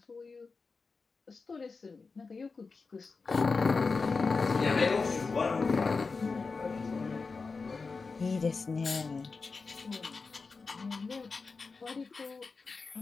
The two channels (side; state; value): right; quieter; 4.4 dB